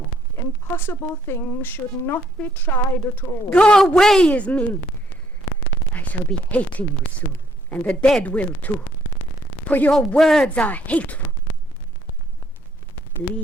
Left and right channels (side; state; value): both; normal; correlation 0.67